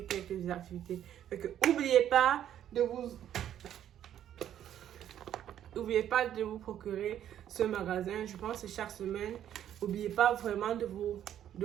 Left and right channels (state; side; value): quieter; left; 10.7 dB